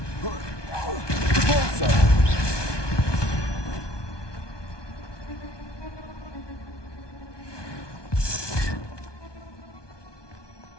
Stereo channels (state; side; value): late; right; 1.2 ms